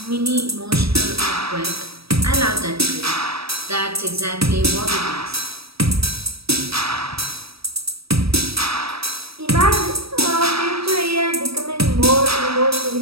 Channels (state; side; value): late; left; 0.77 ms